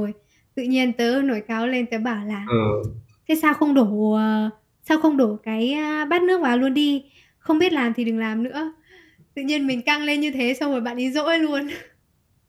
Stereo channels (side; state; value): both; identical; correlation 1.00